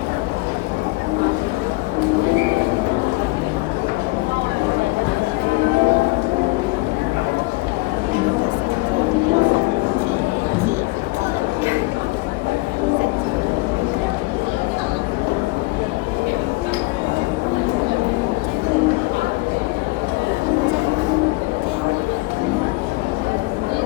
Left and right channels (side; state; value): right; quieter; 23.3 dB